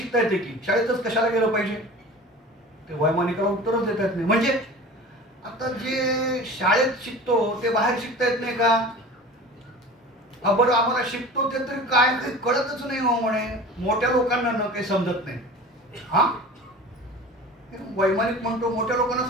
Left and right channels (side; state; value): both; normal; correlation 0.38